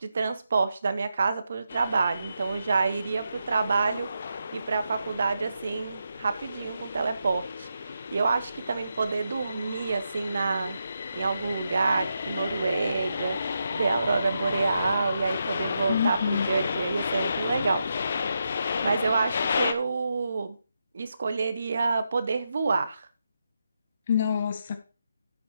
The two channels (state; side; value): inverted; both; correlation -0.85